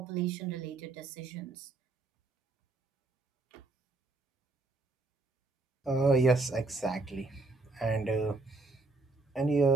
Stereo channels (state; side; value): quieter; left; 3.4 dB